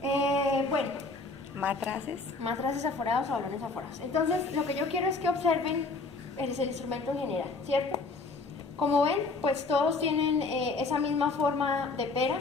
Bueno, matraces aforados o balones aforados. Entonces, lo que yo quiero es que observen el instrumento en general, ¿cierto? Como ven, pues todos tienen esa misma forma de pera,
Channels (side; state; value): right; quieter; 3.7 dB